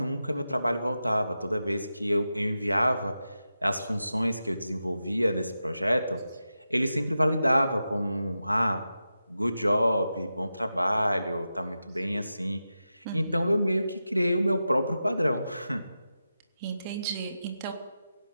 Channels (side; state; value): both; inverted; correlation -0.91